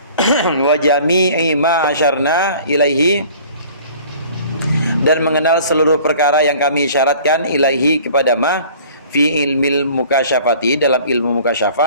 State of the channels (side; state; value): both; inverted; correlation -0.49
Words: wa jami'i ma asyarna ilaihi, dan mengenal seluruh perkara yang kami syaratkan ilaihi kepada ma fi ilmil mukasyafati, dalam ilmu